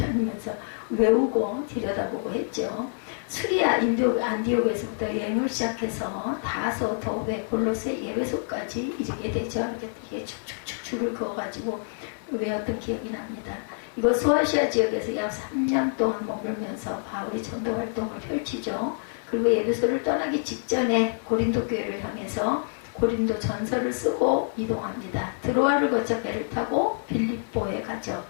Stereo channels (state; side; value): silent; right; 55 dB below the other